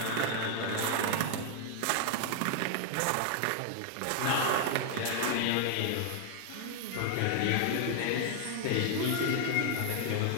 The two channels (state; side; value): different; both; correlation 0.00